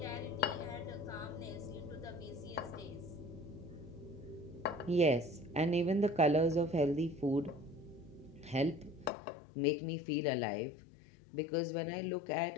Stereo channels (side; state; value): right; drops out; at 9.1 s